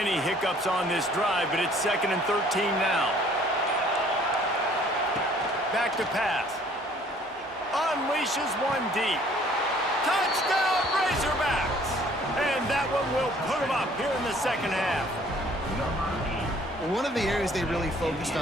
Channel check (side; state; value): both; normal; correlation 0.57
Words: hiccups on this drive, but it's 2nd and 13 now. Back to pass. Unleashes one deep. Touchdown, Razorbacks! And that one will put them up here in the second half. Well, one of the areas they really focused